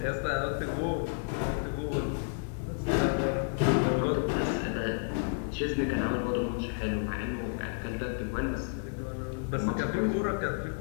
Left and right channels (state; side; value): silent; right; digital silence